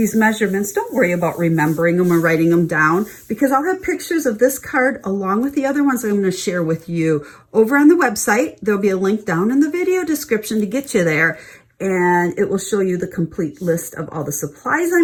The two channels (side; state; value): both; identical; correlation 1.00